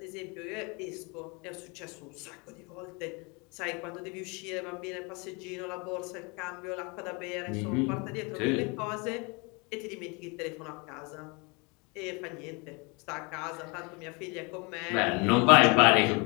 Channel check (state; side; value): quieter; right; 29.9 dB